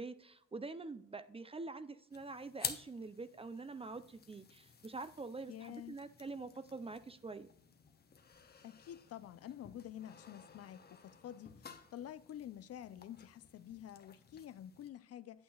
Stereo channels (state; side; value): normal; both; correlation 0.36